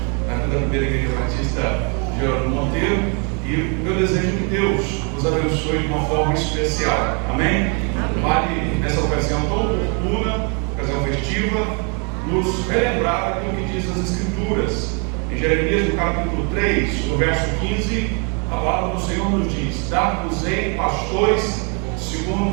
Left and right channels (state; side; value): quieter; left; 36.3 dB